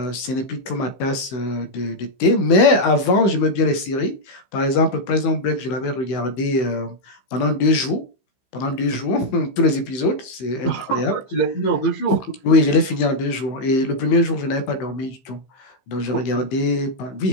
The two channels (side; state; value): right; late; 15 ms